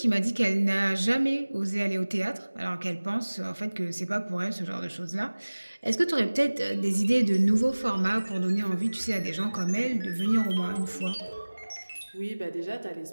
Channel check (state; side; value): inverted; both; correlation -1.00